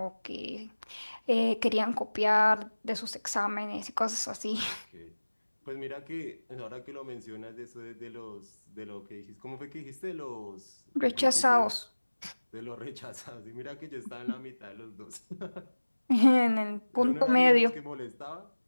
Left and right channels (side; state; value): both; inverted; correlation -1.00